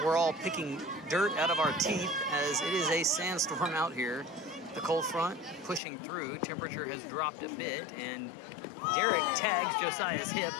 we're all picking dirt out of our teeth as it is a sandstorm out here. The cold front pushing through, temperature has dropped a bit, and Derek tags Josiah's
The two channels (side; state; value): right; drops out; at 5.8 s